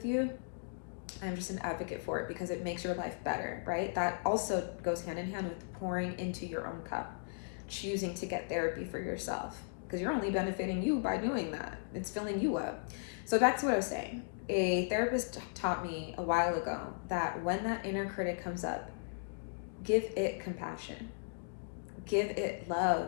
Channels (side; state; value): right; silent; digital silence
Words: you. I'm just an advocate for it because it makes your life better, right? That also goes hand in hand with pouring into your own cup, choosing to get therapy for yourself, because you're only benefiting you by doing that. It's filling you up. So back to what I was saying. A therapist taught me a while ago that when that inner critic comes up, give it compassion, give it